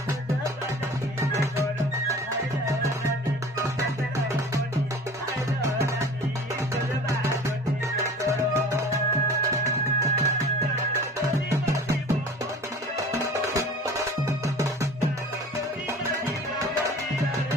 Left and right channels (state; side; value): normal; both; correlation 0.42